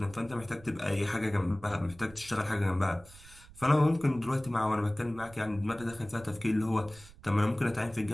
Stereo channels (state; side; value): noise; right; rumble, 21 dB below the sound